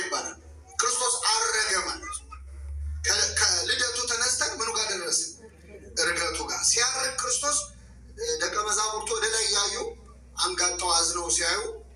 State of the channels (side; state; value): both; identical; correlation 1.00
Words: ክርስቶስ አረገ ማለት ከልደቱ ተነስተን ምኑ ጋር ደረስን? እርገቱ ጋር። ሲያርግ ክርስቶስ ደቀ መዛሙርቱ ወደ ላይ እያዩ አንጋጠው አዝነው ሲያዩ